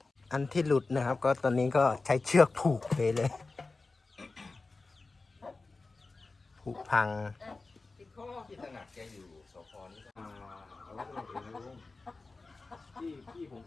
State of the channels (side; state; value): right; quieter; 3.7 dB